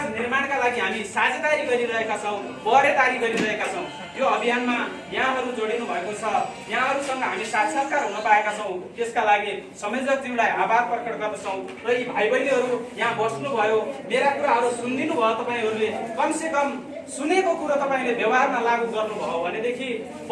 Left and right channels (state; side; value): identical; both; correlation 1.00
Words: निर्माणका लागि हामी साझेदारी गरिरहेका छौँ, पहरेदारी गरिरहेका छौँ। यो अभियानमा यहाँहरू जोडिनु भएको छ, यहाँहरूसँग हामी साक्षात्कार हुन पाएका छौँ। त्यसका लागि संयोजकज्यूलाई आभार प्रकट गर्दछौँ र यी भाइ बहिनीहरू यहाँ बस्नुभयो, मेरा कुराहरू सुनिदिनु भयो तपाईँहरूले। कमसेकम सुनेको कुरो तपाईँले व्यवहारमा लागू गर्नुभयो भनेदेखि